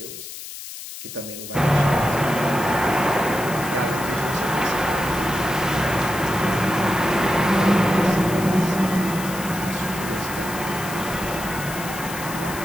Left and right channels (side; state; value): left; noise; hiss, 11 dB below the sound